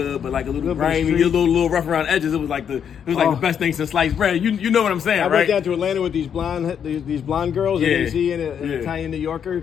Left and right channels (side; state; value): right; quieter; 8.1 dB